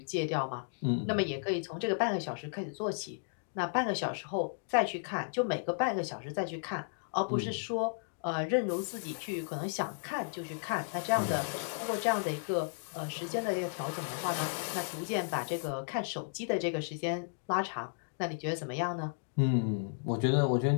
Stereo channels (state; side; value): silent; right; digital silence